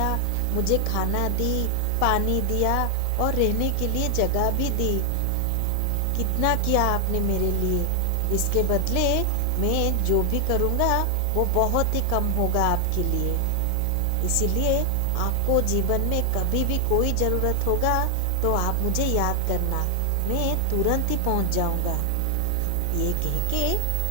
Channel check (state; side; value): different; both; correlation 0.00